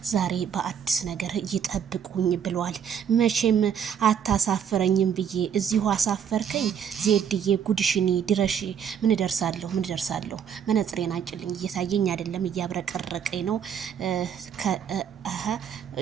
ዛሬ በአዲስ ነገር ይጠብቁኝ ብሏል። መቼም አታሳፍረኝም ብዬ እዚሁ አሳፈርከኝ። ዜድዬ ጉድሽኒ ድረሽ። ምን ደርሳለሁ መነጽሬን አንጭልኝ፣ እየታየኝ አይደለም፣ እያብረቀረቀኝ ነው።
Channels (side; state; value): left; quieter; 8.1 dB